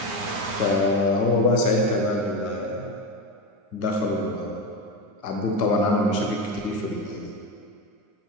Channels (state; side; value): late; left; 9.6 ms